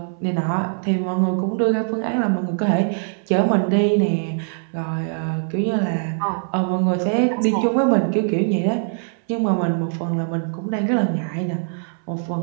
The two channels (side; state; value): left; silent; 64 dB below the other